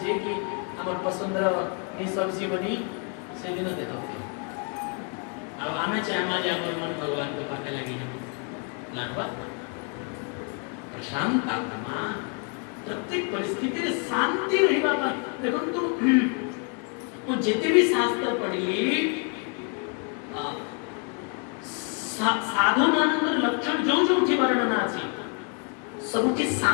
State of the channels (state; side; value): quieter; right; 38.1 dB